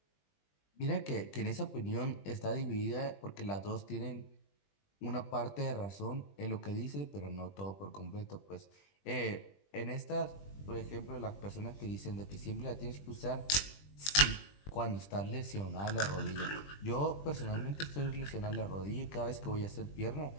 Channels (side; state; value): right; late; 20 ms